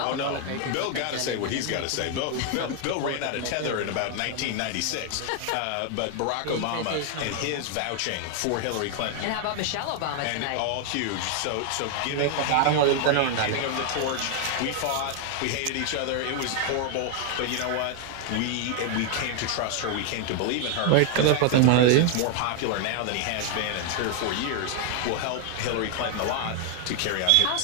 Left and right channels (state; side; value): different; both; correlation 0.00